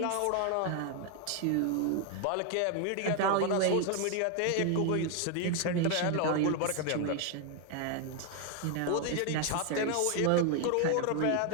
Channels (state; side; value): different; both; correlation 0.01